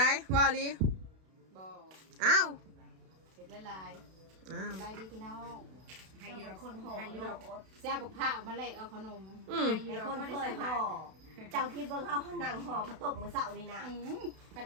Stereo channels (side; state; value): left; late; 32 ms